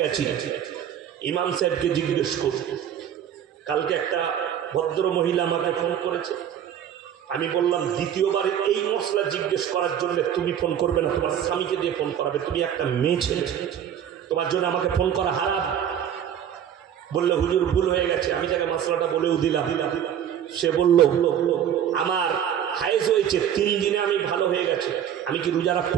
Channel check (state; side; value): quieter; left; 9.6 dB